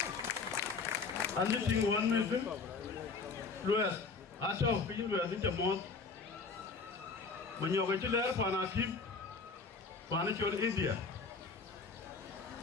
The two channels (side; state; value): right; quieter; 4.6 dB